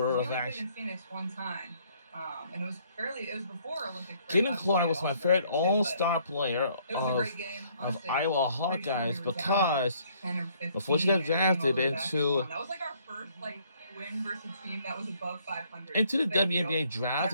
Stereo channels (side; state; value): both; inverted; correlation -0.64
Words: of action. Phoenix one time, and it was before Olympic. Caitlin Clark was my favorite all-star player of Iowa Hawkeyes because before she got drafted into that was like our first win versus a team that was above 500. into the WNBA draft,